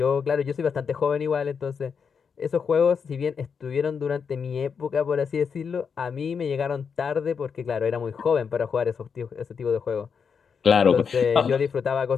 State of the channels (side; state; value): right; quieter; 6.3 dB